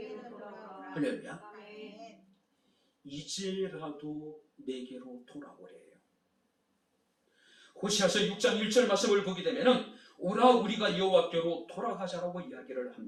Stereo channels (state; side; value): identical; both; correlation 1.00